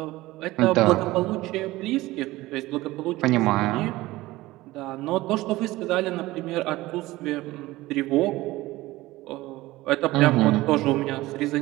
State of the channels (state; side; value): quieter; left; 18.4 dB